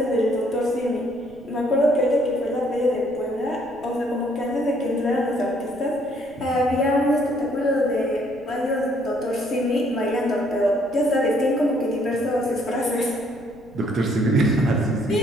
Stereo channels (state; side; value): noise; right; rumble, 26 dB below the sound